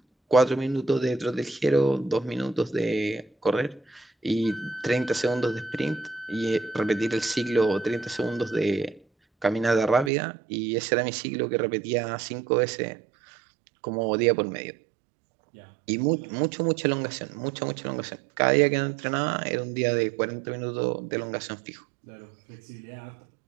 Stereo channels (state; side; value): drops out; left; at 10.1 s